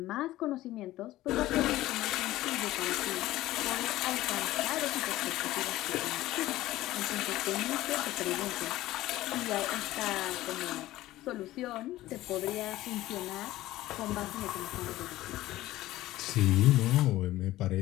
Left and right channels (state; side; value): quieter; right; 16.0 dB